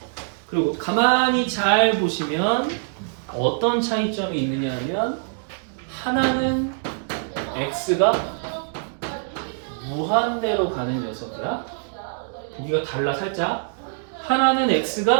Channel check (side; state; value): left; silent; digital silence